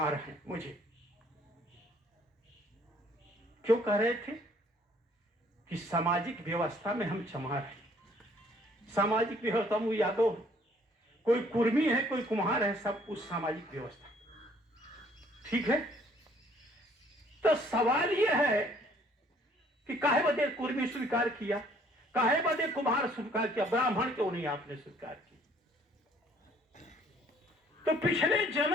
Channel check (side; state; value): both; normal; correlation 0.61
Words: हैं। मुझे क्यों कह रहे थे? कि सामाजिक व्यवस्था में हम चमार हैं। सामाजिक व्यवस्था में यादव, कोई कुर्मी है, कोई कुम्हार है, सब उस सामाजिक व्यवस्था। ठीक है, तो सवाल यह है कि काहे बदे कुर्मी स्वीकार किया, काहे बदे कुम्हार स्वीकार किया, ब्राह्मण क्यों नहीं आपने स्वीकार किया? तो पिछले